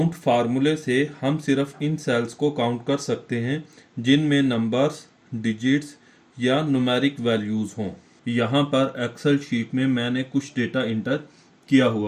फार्मूले से हम सिर्फ इन सेल्स को काउंट कर सकते हैं जिनमें नंबर्स, डिजिट्स या न्यूमेरिक वैल्यूज़ हों। यहाँ पर एक्सेल शीट में मैंने कुछ डेटा इंटर किया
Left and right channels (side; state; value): both; identical; correlation 1.00